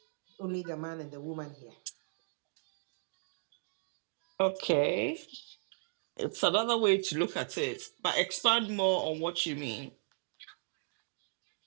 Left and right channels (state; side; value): silent; left; digital silence